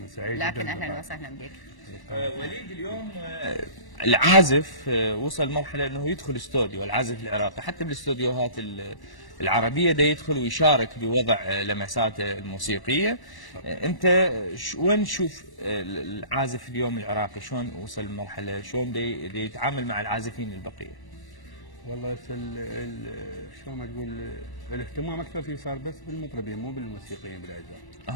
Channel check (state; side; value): late; right; 1.1 ms